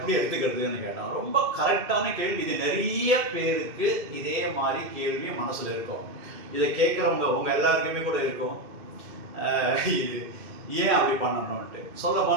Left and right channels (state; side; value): late; left; 2.3 ms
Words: எடுத்துக்கிறதுன்னு கேட்டேன். ரொம்ப கரெக்டான கேள்வி. இது நிறைய பேருக்கு இதே மாதிரி கேள்வி மனசில் இருக்கும். இதை கேட்குறவங்க உங்கள் எல்லாருக்குமே கூட இருக்கும், இது ஏன் அப்படி பண்ணணும்ன்ட்டு. சொல்ல